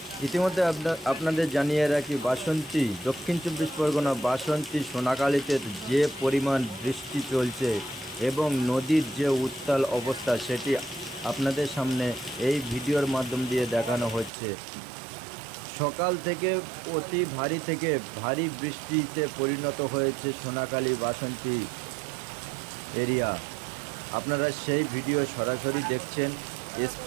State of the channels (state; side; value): drops out; left; at 14.3 s